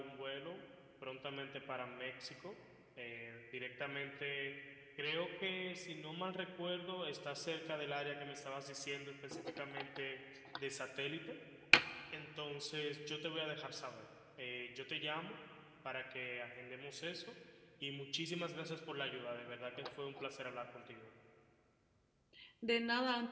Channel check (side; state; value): both; identical; correlation 1.00